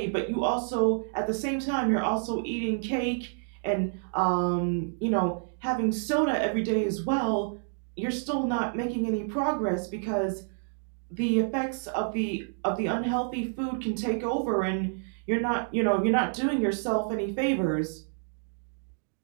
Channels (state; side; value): silent; left; 59 dB below the other